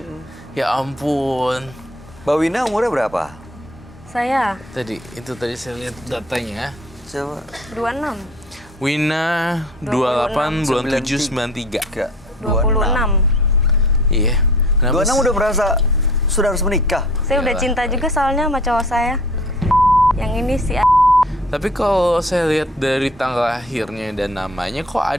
Ya ampun. Mbak Wina umurnya berapa? Saya Tadi saya lihat datanya. Coba. 26. Wina 28 bulan 7 93. Enggak. 26. Iya. Kenapa 26 udah merasa sudah harus menikah. Saya udah Iyalah. cinta juga soalnya sama cowok saya. Yang ini si Tapi kalau saya lihat dari tanggal lahirnya dan namanya, kok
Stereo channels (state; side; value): normal; both; correlation 0.48